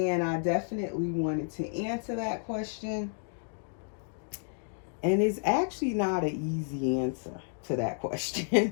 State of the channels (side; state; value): right; silent; 57 dB below the other